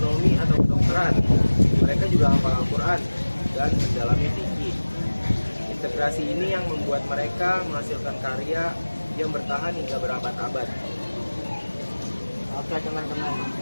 atau kedokteran. Mereka juga hafal Al-Quran dan mendalami fikih. Integrasi ini yang membuat mereka menghasilkan karya yang bertahan hingga berabad-abad. Oke teman-teman,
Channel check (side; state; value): both; inverted; correlation -1.00